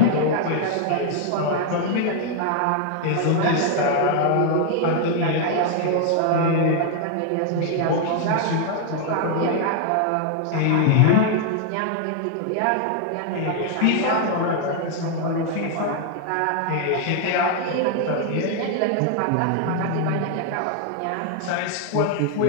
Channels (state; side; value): different; both; correlation 0.00